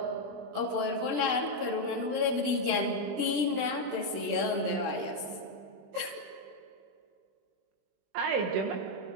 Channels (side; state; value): left; late; 20 ms